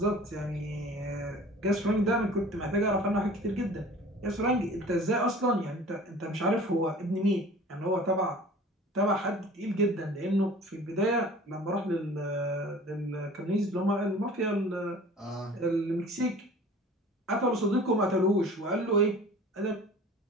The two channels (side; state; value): both; normal; correlation 0.44